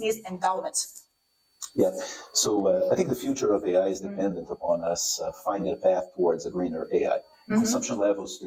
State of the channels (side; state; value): both; identical; correlation 1.00